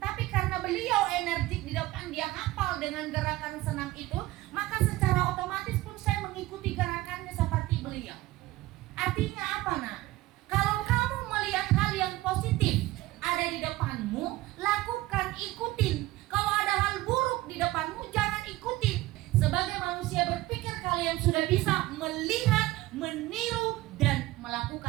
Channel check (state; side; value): quieter; left; 17.9 dB